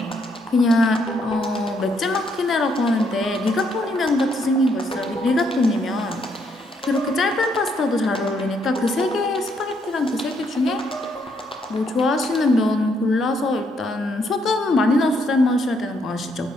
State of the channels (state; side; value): normal; both; correlation 0.73